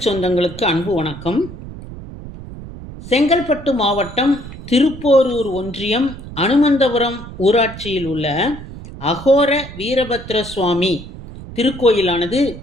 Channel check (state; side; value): noise; right; rumble, 13 dB below the sound